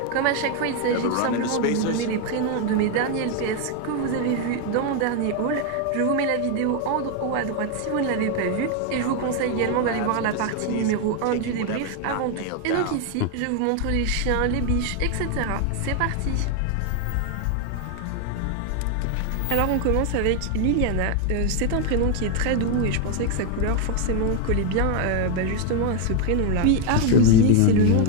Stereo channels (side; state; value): both; different; correlation 0.01